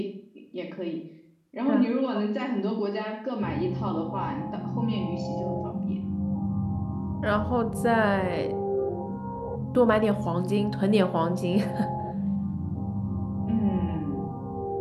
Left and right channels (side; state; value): both; identical; correlation 1.00